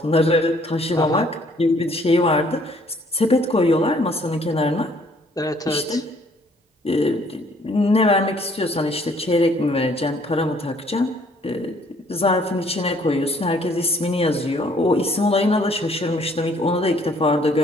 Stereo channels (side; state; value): both; normal; correlation 0.62